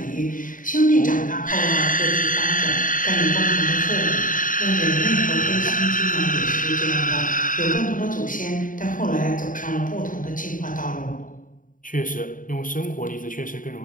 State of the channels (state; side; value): late; right; 0.39 ms